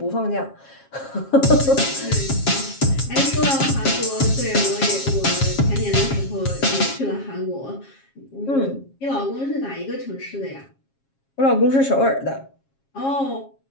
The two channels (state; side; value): late; right; 7.4 ms